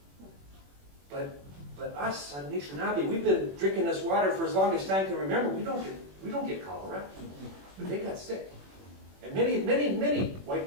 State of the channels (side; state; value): left; late; 21 ms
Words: But us, Anishinaabe, we've been drinking this water for as long as time can remember. We don't get cholera. But they got sick. And many white